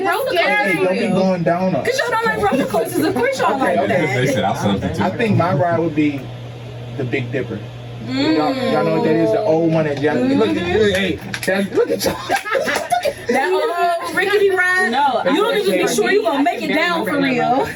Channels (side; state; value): both; identical; correlation 1.00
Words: roller Hey, don't be coasters. going down us. Cause y'all don't like roller coasters. Of course y'all like Okay. They that. said I'll substitute. I think my ride would be the Big Dipper. Y'all know what that is? The old one that y'all look at. Hey, look at y'all. That old rickety ride. No, You don't even be sure you gonna make it down for real.